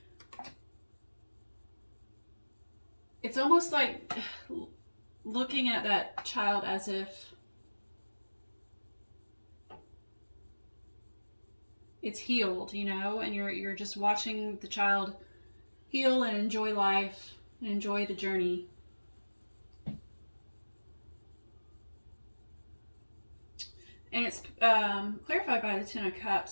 it's almost like looking at that child as if it's healed, and you're just watching the child heal and enjoy life and enjoy the journey. And it's clarified by the Ten of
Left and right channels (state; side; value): inverted; both; correlation -1.00